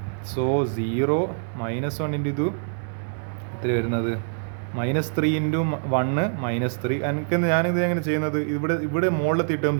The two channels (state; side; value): silent; left; 62 dB below the other